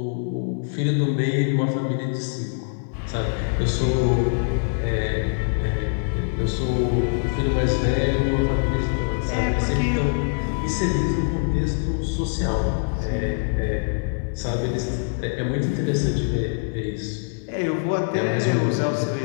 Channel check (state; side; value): silent; right; digital silence